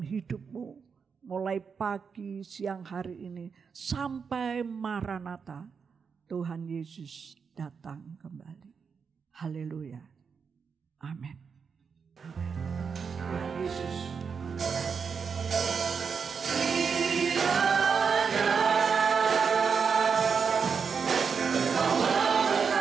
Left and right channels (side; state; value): left; quieter; 6.0 dB